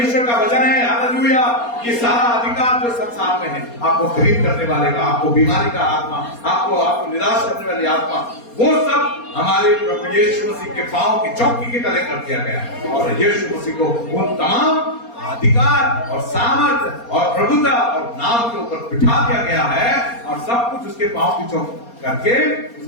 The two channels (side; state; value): right; late; 4.2 ms